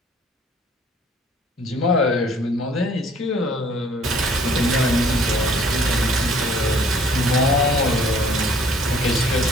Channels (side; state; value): both; normal; correlation 0.56